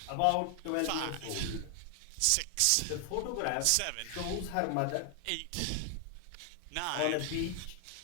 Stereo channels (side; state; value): both; different; correlation 0.00